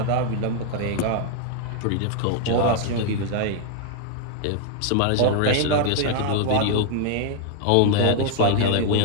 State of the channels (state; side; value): different; both; correlation 0.00